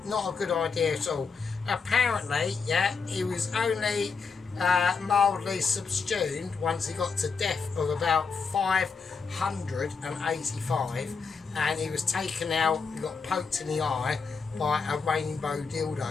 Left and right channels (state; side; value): quieter; right; 5.2 dB